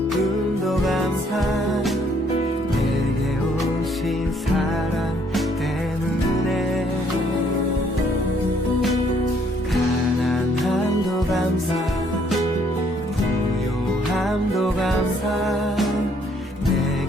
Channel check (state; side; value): normal; both; correlation 0.66